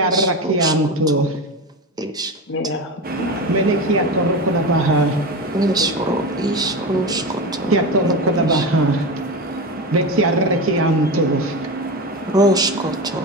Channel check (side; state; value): both; normal; correlation 0.22